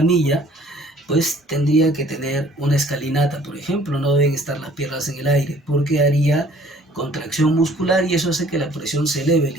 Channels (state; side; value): normal; both; correlation 0.55